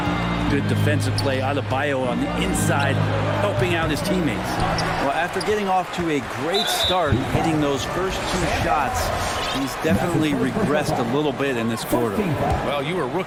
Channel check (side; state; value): both; identical; correlation 1.00